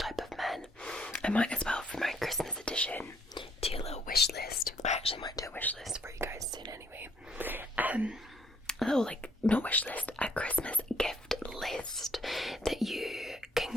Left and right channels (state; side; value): normal; both; correlation 0.66